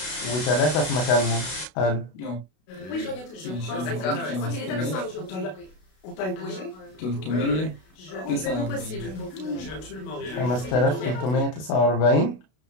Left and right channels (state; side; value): late; right; 32 ms